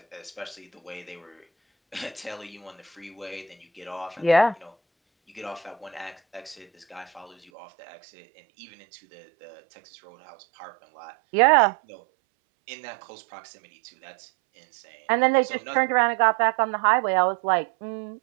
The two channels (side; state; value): left; drops out; at 7.4 s